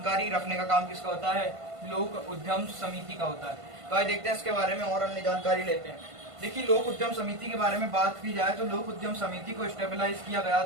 रखने का काम किसका होता है? लोक उद्यम समिति का होता है। तो आइए देखते हैं इसके बारे में और अन्य जानकारी लेते हैं। देखिए, लोक उद्यम समिति के बारे में बात की जाए तो लोक उद्यम समिति को स्टेबलाइज किया गया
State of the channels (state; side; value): late; left; 1.5 ms